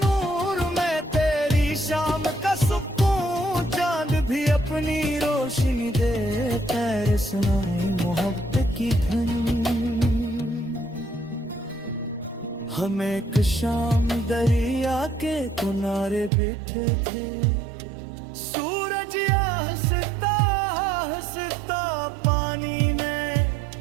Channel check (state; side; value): drops out; left; at 16.3 s